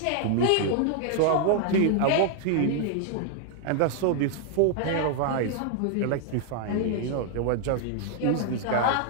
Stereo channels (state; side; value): different; both; correlation -0.01